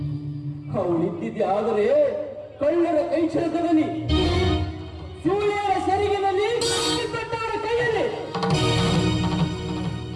ಅವಳಿದ್ದಿದ್ದೆ ಆದರೆ ಕಳ್ಳರ ಕೈ ಚಳಕದಲ್ಲಿ, ಸೂರ್ಯರ ಸೆರಗಿನಲ್ಲಿ, ಕೊಟ್ಟವರ ಕೈಯಲ್ಲಿ.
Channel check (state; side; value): identical; both; correlation 1.00